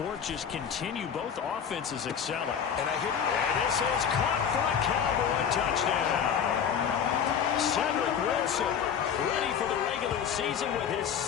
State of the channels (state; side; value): quieter; right; 7.8 dB